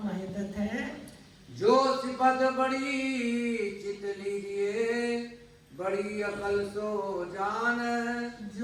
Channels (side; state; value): both; identical; correlation 1.00